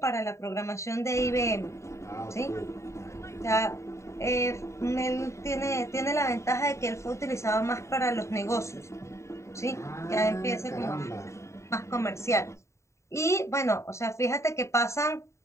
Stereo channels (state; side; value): late; right; 0.14 ms